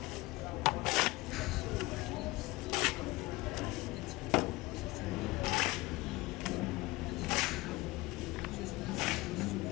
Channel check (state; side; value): quieter; right; 21.2 dB